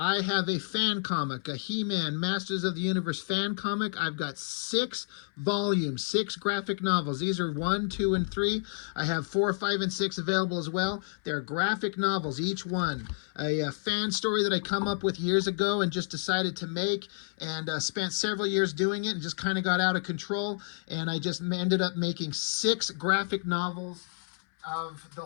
have a fan comic, a He-Man Masters of the Universe fan comic. I've got 6 volumes, 6 graphic novels. These are 1, 2, and 3. I have 4, 5, and 6 available as well. They're graphic novels, each one. A fan story that I come up with years ago and just decided to make, and spent several years doing it and just kind of got out of control. And I just ended up making 6 graphic novels of the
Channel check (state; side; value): silent; right; 58 dB below the other